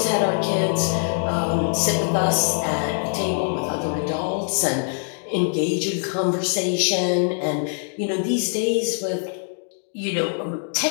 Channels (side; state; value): right; silent; digital silence